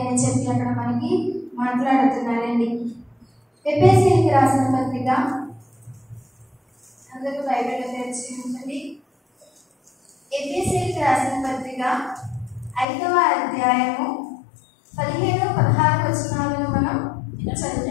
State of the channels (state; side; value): drops out; right; at 12.9 s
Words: అని చెప్పి అక్కడ మనకి మాట్లాడుతున్నారండి. ఎఫెసీయులకు రాసిన పత్రిక, అందరూ బైబిల్ తెరిచి ఉంటుంది. ఎఫెసీయులకు రాసిన పత్రిక 5వ అధ్యాయము 15-16 వచనాలను మనం